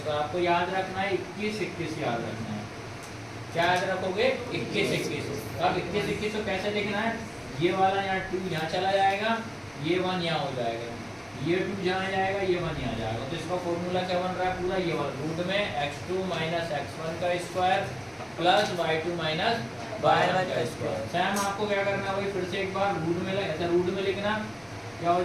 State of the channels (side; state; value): both; identical; correlation 1.00